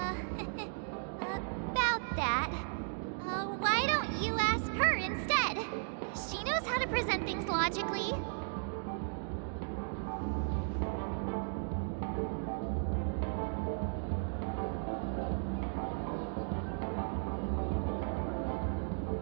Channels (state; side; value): silent; left; digital silence